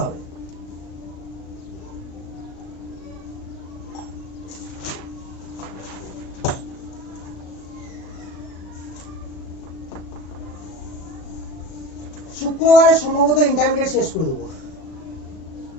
হবে। শুক্রবারে সম্ভবত ইন্টারমিডিয়েট শেষ করে দেবো।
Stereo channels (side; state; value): right; late; 37 ms